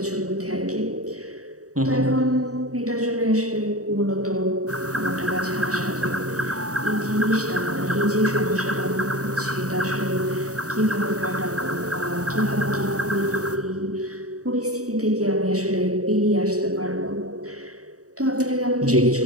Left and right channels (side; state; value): left; late; 0.66 ms